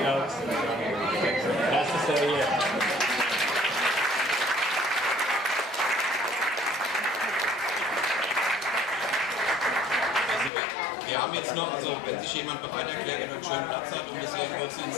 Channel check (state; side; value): drops out; right; at 10.5 s